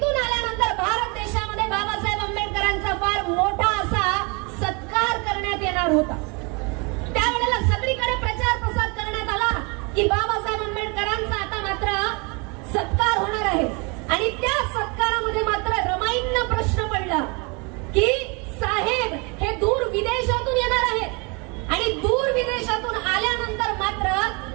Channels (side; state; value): left; quieter; 30.7 dB